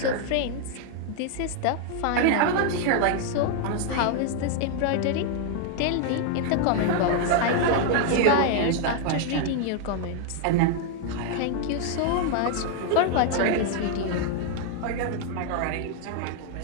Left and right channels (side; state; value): both; different; correlation 0.00